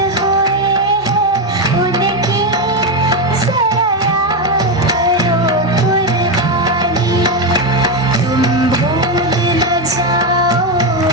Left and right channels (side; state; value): both; normal; correlation 0.09